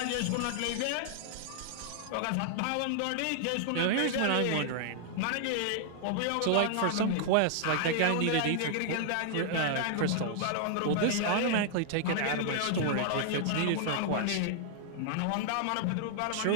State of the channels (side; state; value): both; different; correlation -0.01